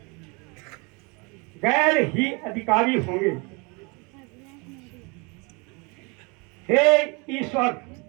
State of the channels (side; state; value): left; quieter; 30.0 dB